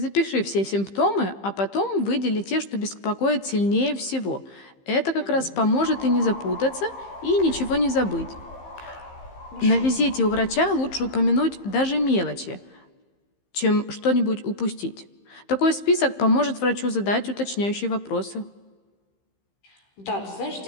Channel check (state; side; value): late; right; 15 ms